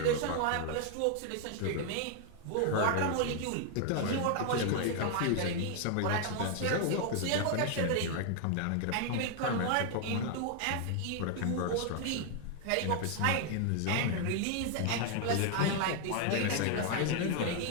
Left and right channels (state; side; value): different; both; correlation 0.00